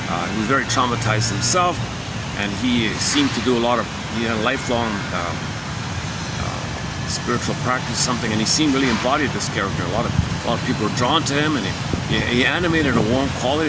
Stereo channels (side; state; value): both; identical; correlation 1.00